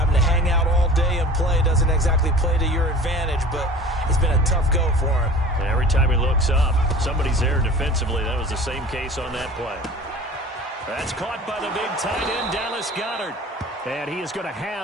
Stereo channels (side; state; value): both; normal; correlation 0.43